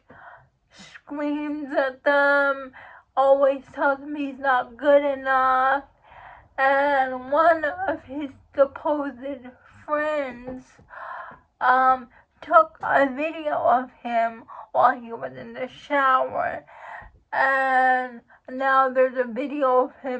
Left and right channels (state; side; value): identical; both; correlation 1.00